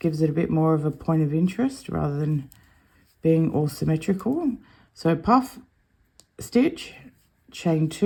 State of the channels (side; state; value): both; identical; correlation 1.00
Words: it a bit more of a point of interest rather than being all symmetrical. So puff, stitch, chain